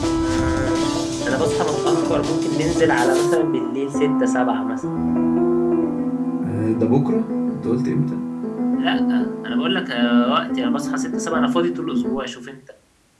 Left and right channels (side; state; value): both; identical; correlation 1.00